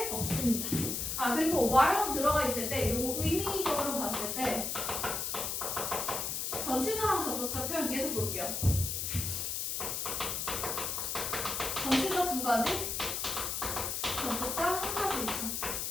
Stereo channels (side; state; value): left; noise; hiss, 2 dB below the sound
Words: 없습니다. 아, 그리고 while 들어가 있을 때 이거 의미적으로 봤을 때 전치사랑 접속사 표현 얘도 볼게요. 전치사 2가지, 접속사 1가지 있죠.